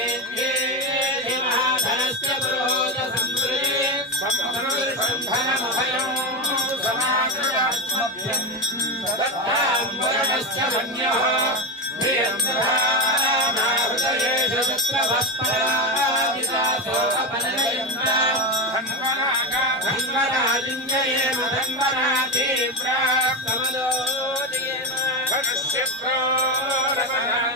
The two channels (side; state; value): both; normal; correlation 0.14